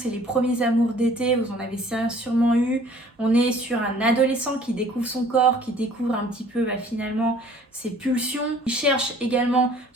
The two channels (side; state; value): both; normal; correlation 0.53